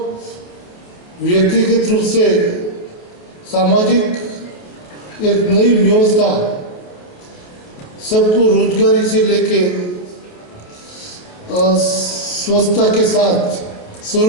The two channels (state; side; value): late; right; 28 ms